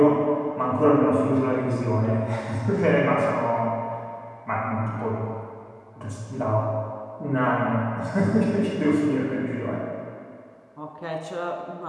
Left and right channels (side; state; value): both; identical; correlation 1.00